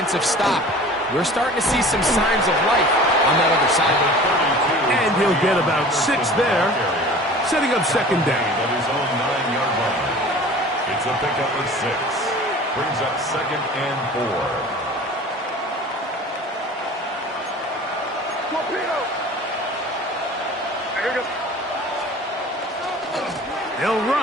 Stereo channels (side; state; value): both; normal; correlation 0.42